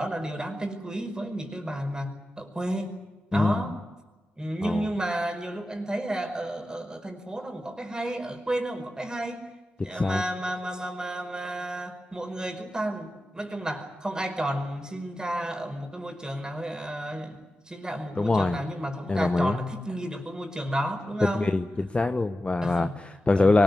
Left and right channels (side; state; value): both; normal; correlation 0.92